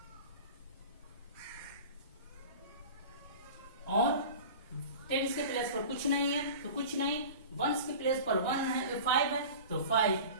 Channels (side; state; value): both; inverted; correlation -0.37